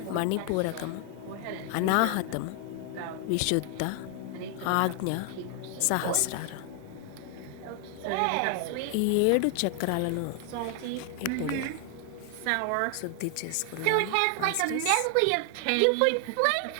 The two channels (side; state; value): both; different; correlation 0.00